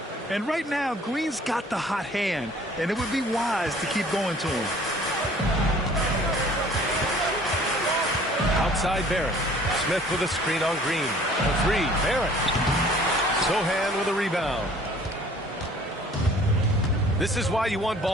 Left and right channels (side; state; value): both; normal; correlation 0.53